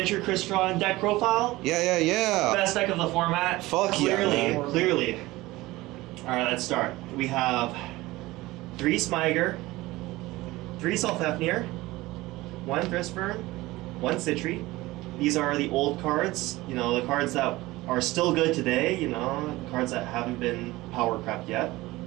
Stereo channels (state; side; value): quieter; left; 19.2 dB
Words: Crystron deck profile. Yeah. Best deck of the format. Fuck clearly, yeah. Clearly. Alright, let's start. We have 3 Smiger, 3 Sulfafnir, 1 Crystron, 1 Citri. These are the old cards, you know, the cards that are still good today, you know, cards that haven't been power crept yet.